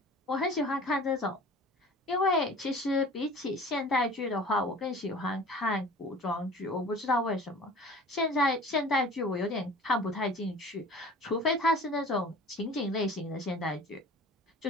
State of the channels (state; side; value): normal; both; correlation 0.44